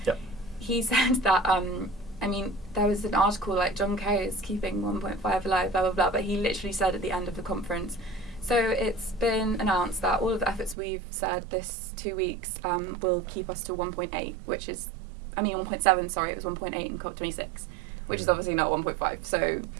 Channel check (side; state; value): left; drops out; at 10.8 s